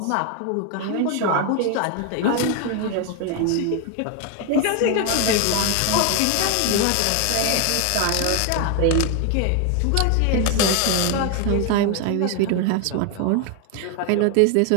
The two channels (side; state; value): both; different; correlation 0.01